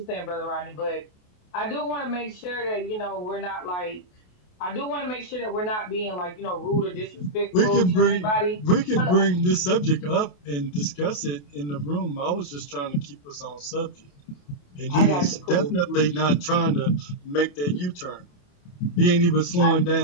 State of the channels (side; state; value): right; late; 28 ms